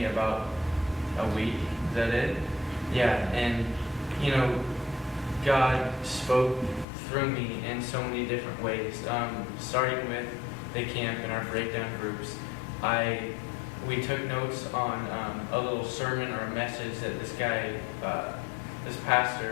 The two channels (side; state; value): right; drops out; at 6.9 s